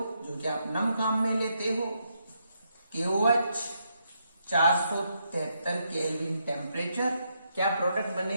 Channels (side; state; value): both; inverted; correlation -0.79